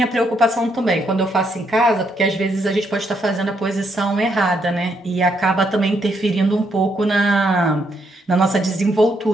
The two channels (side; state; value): both; normal; correlation 0.75